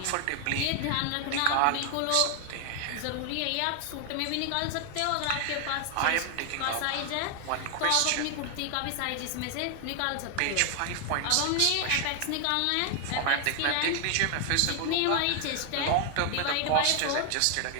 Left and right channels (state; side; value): different; both; correlation 0.00